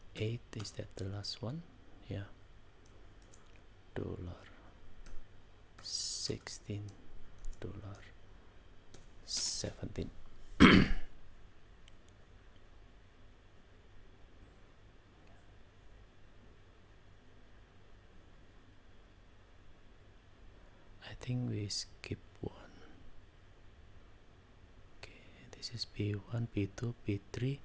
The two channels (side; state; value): both; identical; correlation 1.00